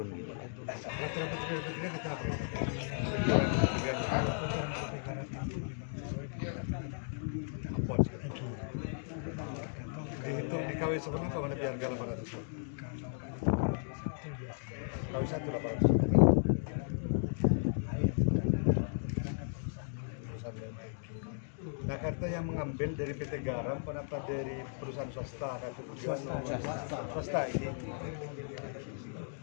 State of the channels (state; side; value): silent; right; digital silence